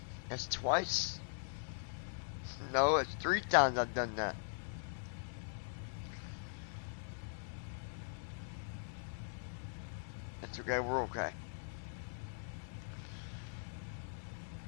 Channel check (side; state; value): right; silent; digital silence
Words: That's twice. No, it's 3 times I've done that. That's okay, we're okay.